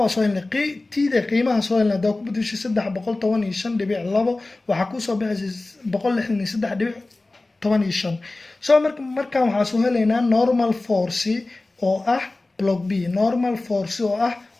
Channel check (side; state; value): right; quieter; 3.0 dB